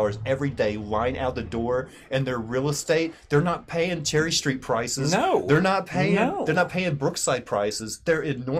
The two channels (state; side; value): identical; both; correlation 1.00